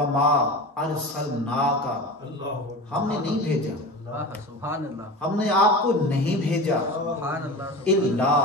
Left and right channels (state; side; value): normal; both; correlation 0.31